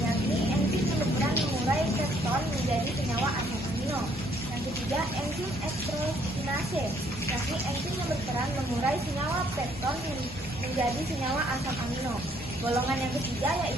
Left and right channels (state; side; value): normal; both; correlation 0.66